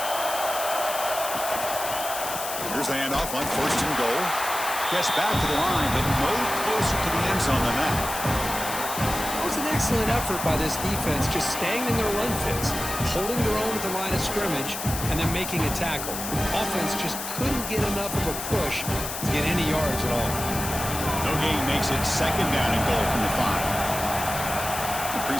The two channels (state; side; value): noise; left; hiss, 6 dB below the sound